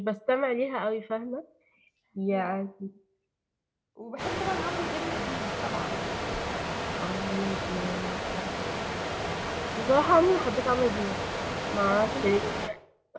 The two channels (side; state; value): both; identical; correlation 1.00